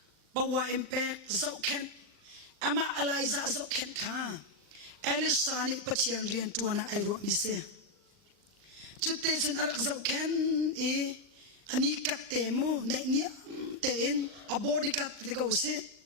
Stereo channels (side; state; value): left; late; 39 ms